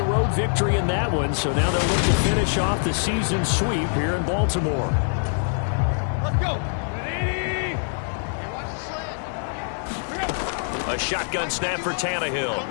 road victory in that one, so now they'll look to finish off the season sweep here in Baltimore. Let's go. A shotgun snap for Tannehill.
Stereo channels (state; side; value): silent; right; 63 dB below the other